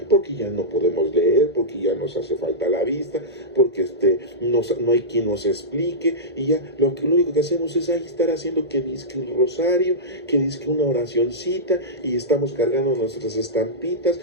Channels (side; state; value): both; normal; correlation -0.14